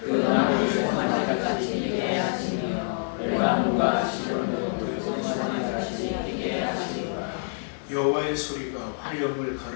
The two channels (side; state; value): right; silent; 61 dB below the other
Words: 나무를 소환하같이 뛰게 하시며 레바논과 시론도 소환하같이 뛰게 하시리라. 여호와의 소리가 화염을